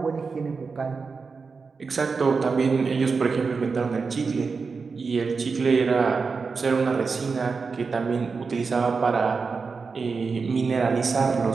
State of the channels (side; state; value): left; quieter; 4.8 dB